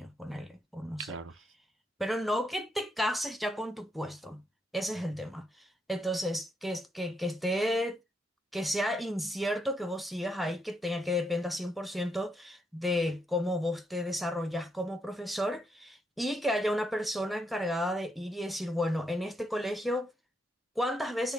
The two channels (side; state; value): both; normal; correlation 0.79